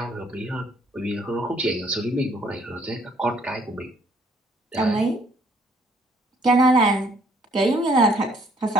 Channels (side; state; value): both; normal; correlation 0.63